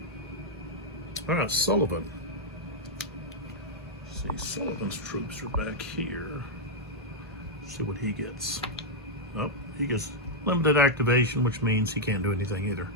All right, Sullivan. Let's see, Sullivan's troops are back here. Let's see what he gets. Oh, he gets limited activation, which means he can't do anything either.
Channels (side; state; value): both; normal; correlation -0.03